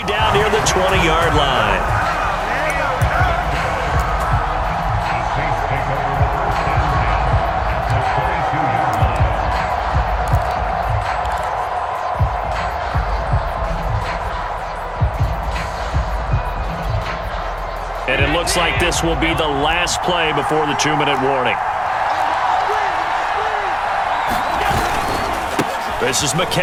down near the 20-yard line. And it looks like this will be the last play before the 2-minute warning. This is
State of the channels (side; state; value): both; identical; correlation 1.00